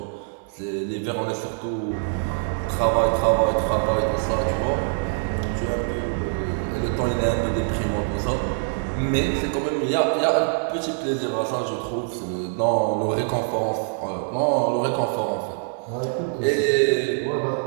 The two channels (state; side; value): silent; left; 60 dB below the other